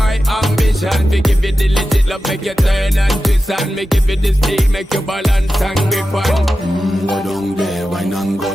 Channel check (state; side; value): normal; both; correlation 0.92